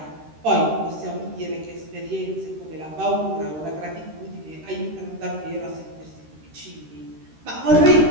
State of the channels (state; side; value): late; left; 13 ms